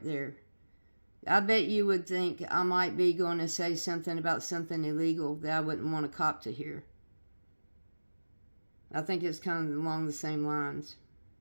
there." I bet you would think I might be going to say something about something illegal that I wouldn't want a cop to hear. I think it's kind of along the same lines.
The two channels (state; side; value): inverted; both; correlation -1.00